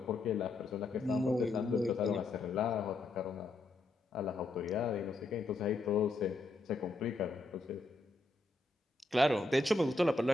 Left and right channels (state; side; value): quieter; right; 3.2 dB